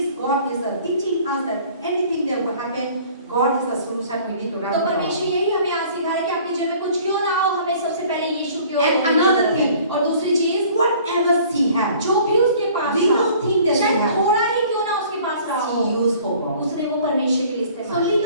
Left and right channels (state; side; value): inverted; both; correlation -0.51